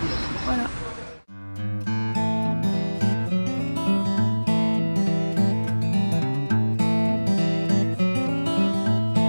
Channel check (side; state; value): both; inverted; correlation -1.00